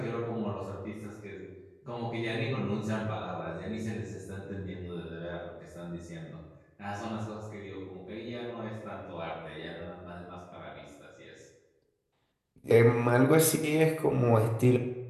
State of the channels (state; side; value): identical; both; correlation 1.00